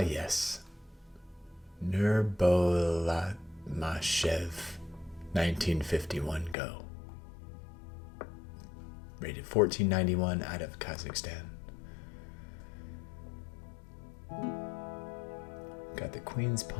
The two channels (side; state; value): right; drops out; at 6.6 s